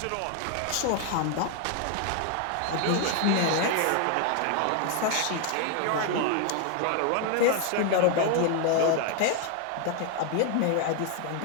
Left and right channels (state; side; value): different; both; correlation 0.01